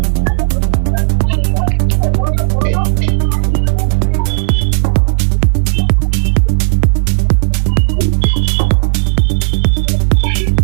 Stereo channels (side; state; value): left; silent; digital silence